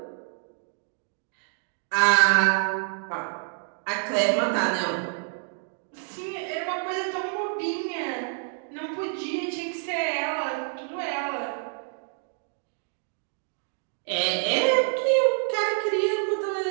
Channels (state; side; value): silent; left; digital silence